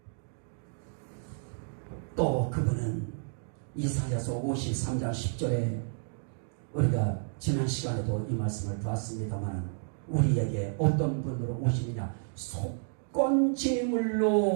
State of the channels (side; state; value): left; silent; digital silence